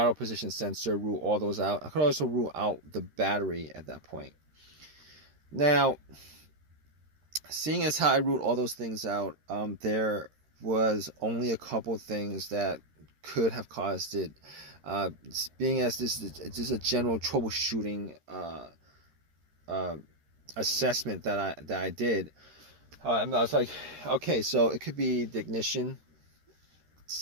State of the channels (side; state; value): left; late; 13 ms